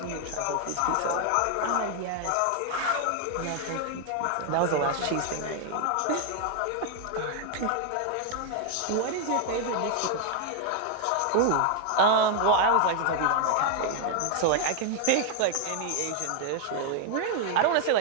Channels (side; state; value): both; different; correlation 0.00